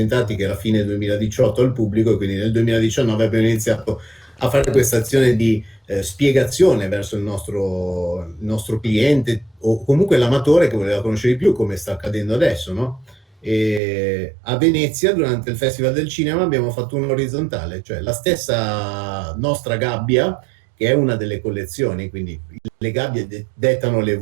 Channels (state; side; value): drops out; left; at 13.8 s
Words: che era fine 2018 al pubblico e quindi nel 2019 abbiamo iniziato a fare questa azione di spiegazione verso il nostro cliente o comunque l'amatore che voleva conoscere di più, come sta accadendo adesso, no? E a Venezia, durante il Festival del Cinema, abbiamo fatto un orizzontale, cioè la stessa nostra gabbia, che è una delle collezioni, quindi le gabbie dettano